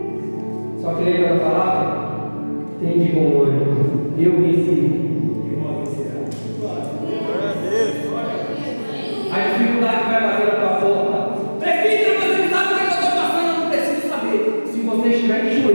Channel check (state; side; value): inverted; both; correlation -1.00